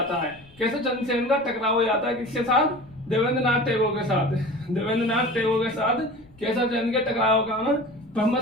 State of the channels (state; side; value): noise; left; rumble, 26 dB below the sound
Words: है। केशव चंद्र सेन का टकराव हो जाता है किसके साथ? देवेंद्रनाथ टैगोर के साथ। देवेंद्रनाथ टैगोर के साथ केशव चंद्र के टकराव का कारण ब्रह्म